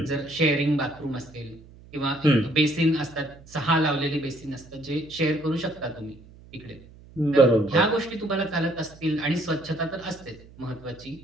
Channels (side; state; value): right; noise; hum, 22 dB below the sound